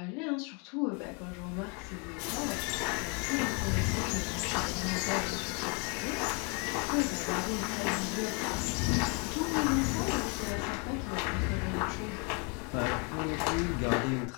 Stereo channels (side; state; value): right; quieter; 34.0 dB